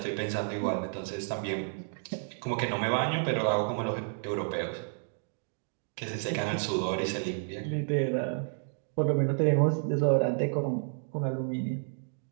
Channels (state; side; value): silent; left; digital silence